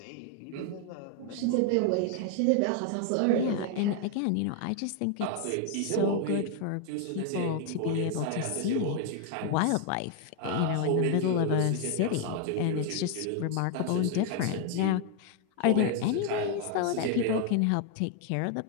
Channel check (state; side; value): different; both; correlation 0.00